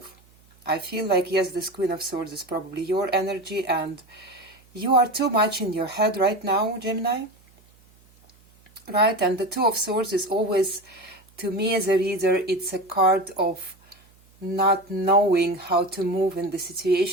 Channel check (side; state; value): right; noise; hum, 30 dB below the sound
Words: I feel like, yes, this Queen of Swords is probably your energy, and you are too much in your head right now, Gemini. Right? And the Two of Swords is always, to me as a reader, it's a card of not knowing how to move in the